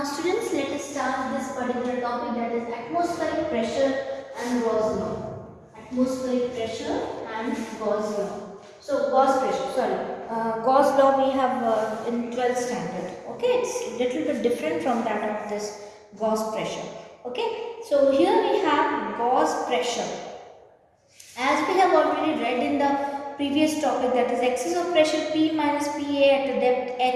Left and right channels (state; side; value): identical; both; correlation 1.00